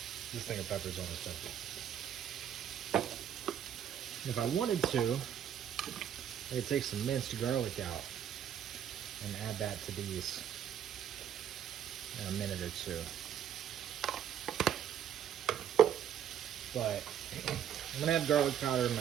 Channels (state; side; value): quieter; left; 9.6 dB